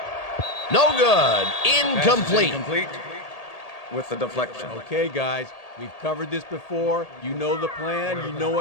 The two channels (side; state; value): right; late; 1.8 ms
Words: No good. Incomplete. Incomplete with the deflection. Okay, guys, we've covered this before. You know the plan. You know